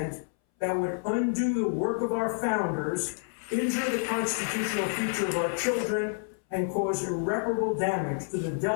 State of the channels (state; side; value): silent; right; 59 dB below the other